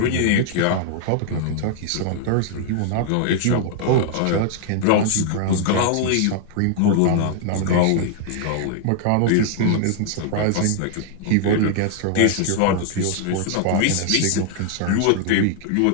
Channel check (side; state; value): both; different; correlation 0.00